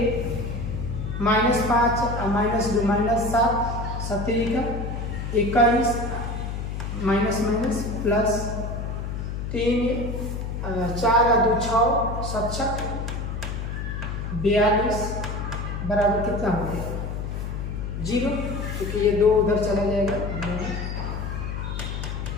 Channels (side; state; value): left; noise; hum, 4 dB below the sound